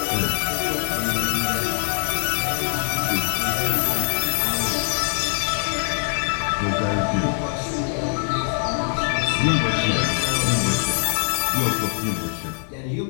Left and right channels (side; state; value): right; silent; 64 dB below the other